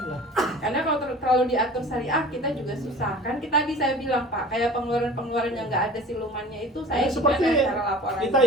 Karena kalau terlalu diatur syariah kita juga susah. Kan kita tadi saya bilang Pak, kayak pengeluaran-pengeluaran yang nggak ada silumannya itu saya Ya, seperti gimana cara laporan. kita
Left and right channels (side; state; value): both; normal; correlation 0.43